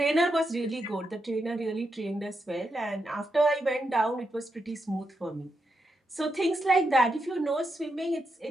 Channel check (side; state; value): both; normal; correlation 0.84